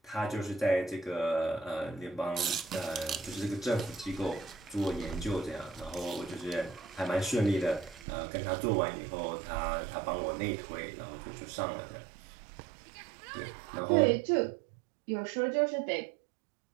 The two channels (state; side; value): drops out; left; at 8.1 s